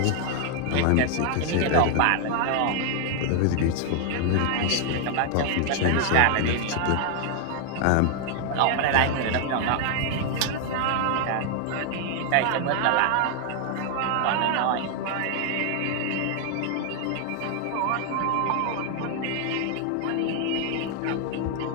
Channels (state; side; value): different; both; correlation 0.00